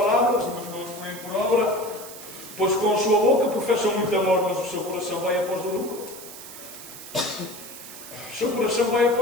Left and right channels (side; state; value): right; noise; hiss, 14 dB below the sound